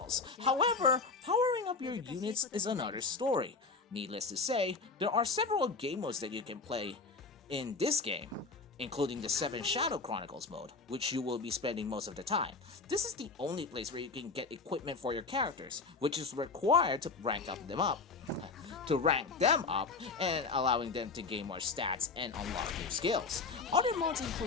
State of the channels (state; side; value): quieter; right; 4.2 dB